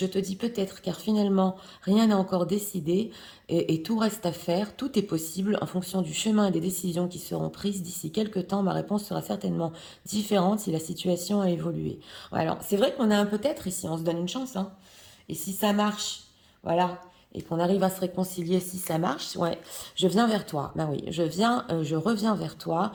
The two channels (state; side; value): identical; both; correlation 1.00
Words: te dis peut-être, car finalement, rien n'est encore décidé et tout reste à faire. Tout est possible en fonction du chemin et des décisions qui seront prises d'ici quelques temps. Ma réponse sera certainement différente si la situation a évolué. Ouais, alors, c'est vrai qu'on a un peut-être ici, on se donne une chance, hein. Et si ça marche, voilà, et qu'on arrive à se réconcilier si ça marche, ouais, je viens vers toi. Ben oui, je reviens vers toi